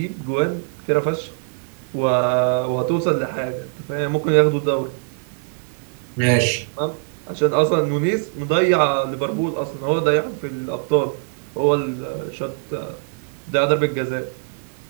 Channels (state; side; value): silent; left; 64 dB below the other